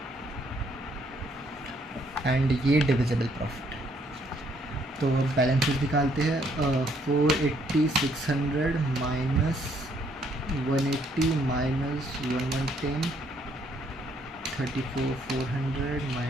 एंड ये डिविजिबल प्रॉफिट। तो बैलेंसेस निकालते हैं। 480 600 माइनस 180 माइनस 1110, 34,400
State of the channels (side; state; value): both; normal; correlation 0.68